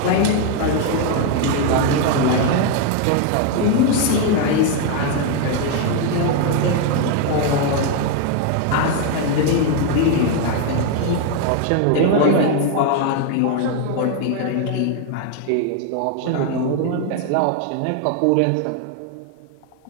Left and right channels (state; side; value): different; both; correlation 0.01